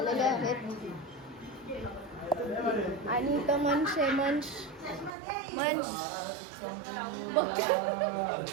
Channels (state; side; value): drops out; left; at 5.1 s